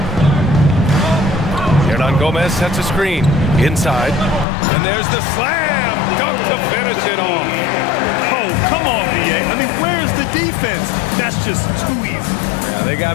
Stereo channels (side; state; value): right; drops out; at 4.5 s